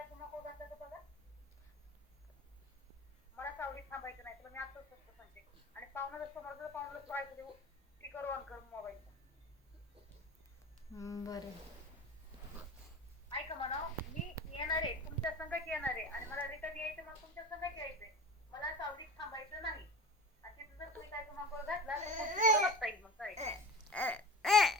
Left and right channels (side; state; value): both; normal; correlation 0.34